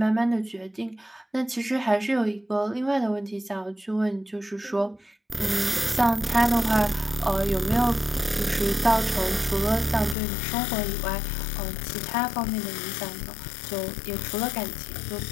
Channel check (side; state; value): right; drops out; at 10.2 s